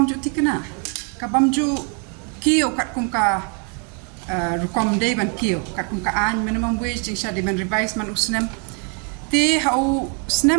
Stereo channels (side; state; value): left; quieter; 38.5 dB